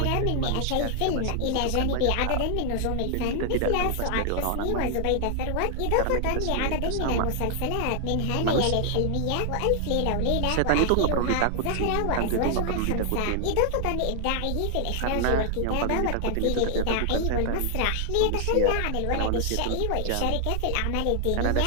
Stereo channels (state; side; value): different; both; correlation 0.00